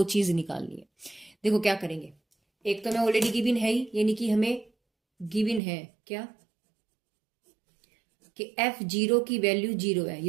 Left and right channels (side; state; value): left; drops out; at 5.6 s